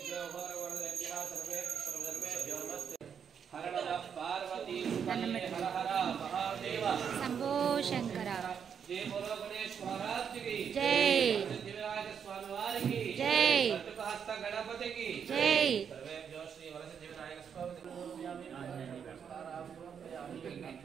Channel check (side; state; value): left; quieter; 7.5 dB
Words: పార్వతీ హర హర మహాదేవ శంభో శంకర जय बोलो गणेश महाराज की जय, सिद्धिविनायक स्वामी वारी की जय, हस्त गणपति की जय। सर्वेभ्यो श्री वरसिद्धिविनायक स्वामी स्वामी